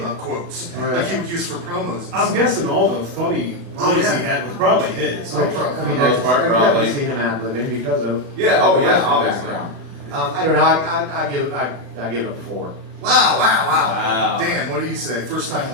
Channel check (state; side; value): late; left; 36 ms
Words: quotes, Right. like he would use for promos. And I'm stuff. guessing all the funny Oh, lines yeah. he had was probably his. Oh, I probably. mean, Most part, I've probably. definitely seen him ad-libbing because of Yeah, oh, yeah, wrestling obviously. background. I don't know. I give it a 4. Wow! Wow. Dan, what do you say? First time